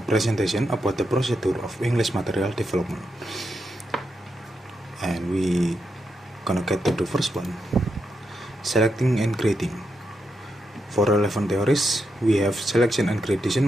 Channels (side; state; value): both; normal; correlation 0.84